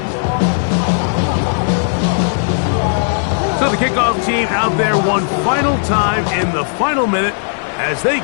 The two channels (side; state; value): right; silent; digital silence